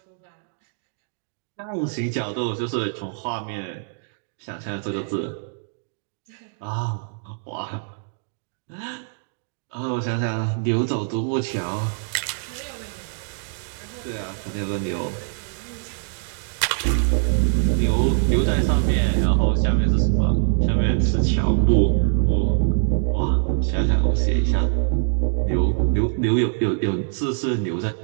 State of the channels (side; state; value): left; silent; digital silence